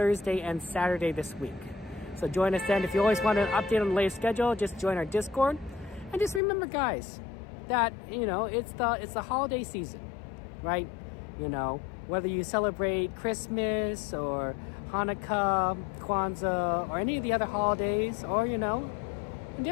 and Saturday this week. So join us then. If you always want an update on the latest schedule, just join our Discord. And just remember, guys, that it's the holiday season, right? Whether you celebrate Christmas or Hanukkah, Kwanzaa, or any of the other holidays, or and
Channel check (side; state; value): right; drops out; at 6.4 s